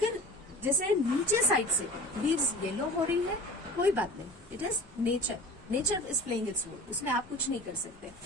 जैसे नीचे साइड से लीव्स येलो हो रही है, कोई बात नहीं, it is nature, nature is playing its role, उसमें आप कुछ नहीं कर सकते,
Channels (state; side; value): normal; both; correlation 0.38